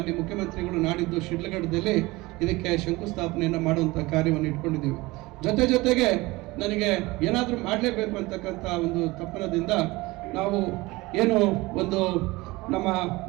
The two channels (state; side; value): quieter; left; 21.4 dB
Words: ಮುಖ್ಯಮಂತ್ರಿಗಳು ನಾಡಿದ್ದು ಶಿಡ್ಲಘಟ್ಟದಲ್ಲಿ ಇದಕ್ಕೆ ಶಂಕುಸ್ಥಾಪನೆಯನ್ನು ಮಾಡುವಂಥ ಕಾರ್ಯವನ್ನು ಇಟ್ಕೊಂಡಿದ್ದೀವಿ. ಜೊತೆಗೆ ನನಗೆ ಏನಾದರೂ ಮಾಡಲೇಬೇಕು ಅಂತಕ್ಕಂಥ ಒಂದು ತಪ್ಪನದಿಂದ ನಾವು ಏನು ಒಂದು ನಮ್ಮ